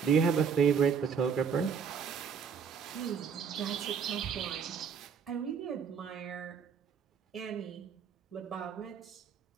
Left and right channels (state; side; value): quieter; left; 6.6 dB